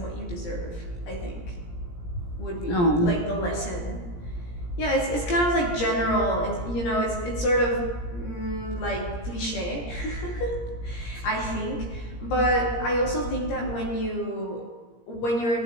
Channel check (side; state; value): right; late; 17 ms